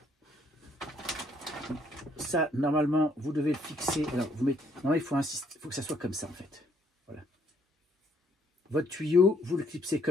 Ça, normalement, vous devez le fixer. Alors, vous mettez, non, il faut que ça soit comme ça, en fait. Voilà. Votre tuyau, vous le clipsez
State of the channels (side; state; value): both; normal; correlation 0.68